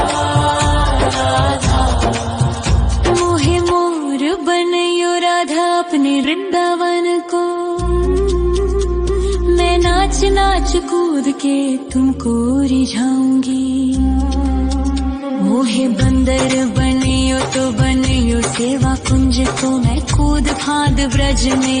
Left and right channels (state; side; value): identical; both; correlation 1.00